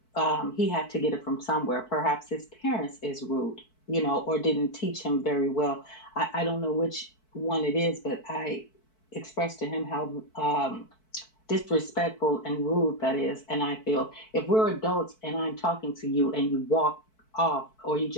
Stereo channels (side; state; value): right; late; 4.6 ms